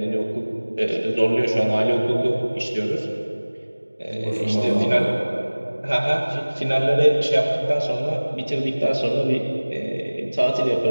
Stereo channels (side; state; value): both; inverted; correlation -1.00